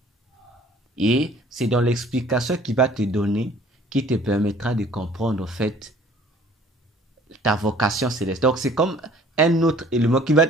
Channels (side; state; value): both; normal; correlation 0.53